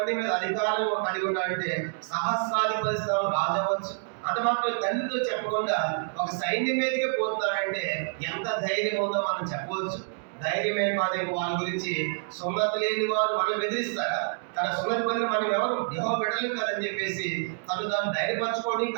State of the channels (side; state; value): left; silent; 60 dB below the other